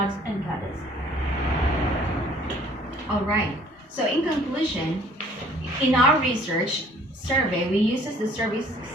and goddess. All right. So in conclusion, in our research survey, we uses the survey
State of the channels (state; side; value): normal; both; correlation 0.56